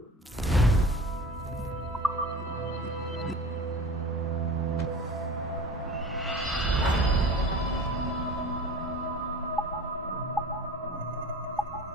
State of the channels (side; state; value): both; normal; correlation 0.38